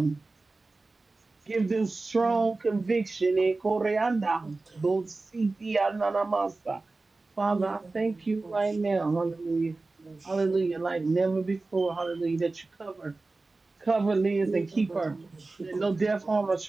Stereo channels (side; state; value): left; quieter; 3.4 dB